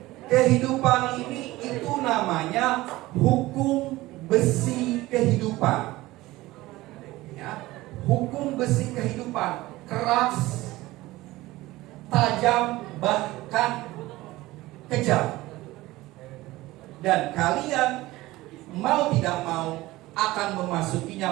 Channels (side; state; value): left; quieter; 18.4 dB